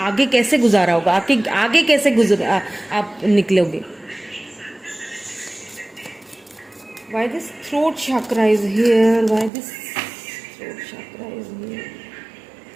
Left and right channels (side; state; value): left; drops out; at 9.5 s